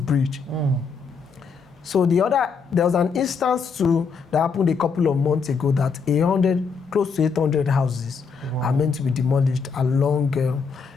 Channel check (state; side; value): quieter; right; 5.4 dB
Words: bridge. So there was an instance too that happened a couple of months ago that close to 800 houses are meant to be demolished along